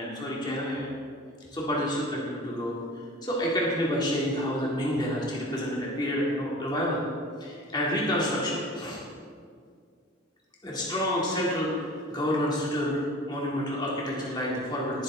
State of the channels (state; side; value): normal; both; correlation 0.40